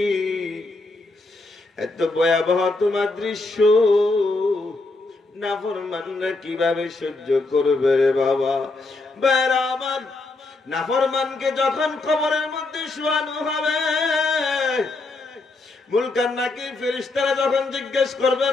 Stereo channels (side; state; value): right; quieter; 3.2 dB